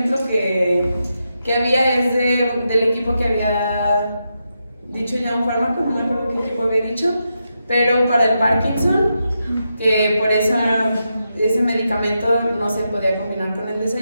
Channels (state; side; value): inverted; both; correlation -0.86